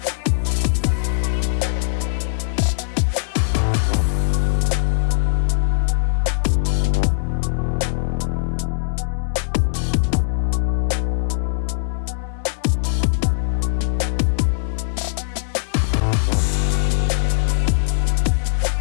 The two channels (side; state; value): right; silent; digital silence